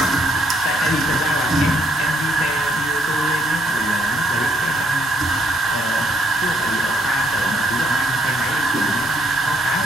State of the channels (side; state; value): left; noise; hum, 26 dB below the sound